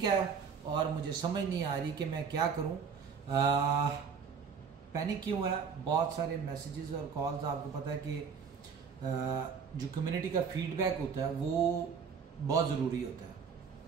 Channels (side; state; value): left; quieter; 6.3 dB